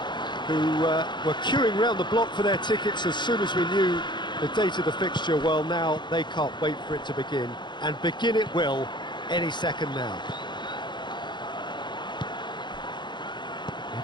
who were queuing round the block for their tickets as soon as we knew the date of the fixture, well, now they can't wait for it to begin. And begin it will any second now.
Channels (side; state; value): right; late; 0.22 ms